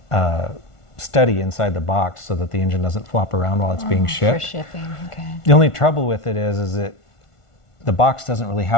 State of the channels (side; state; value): right; late; 1.5 ms